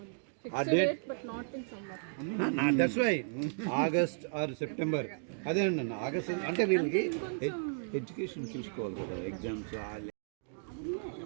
A date, but not in summer. That's why August or September. అదే అన్న ఆగస్ట్ అంటే వీళ్ళకి ఎడ్యుకేషన్ చూసుకోవాలి కదా, ఎగ్జామ్స్.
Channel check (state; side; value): silent; left; digital silence